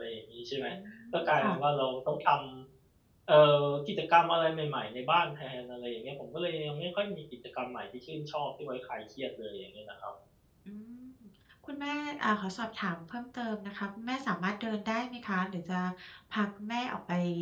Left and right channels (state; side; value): identical; both; correlation 1.00